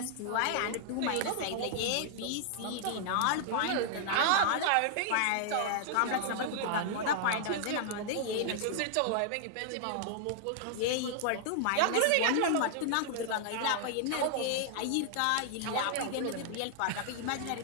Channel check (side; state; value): both; different; correlation -0.01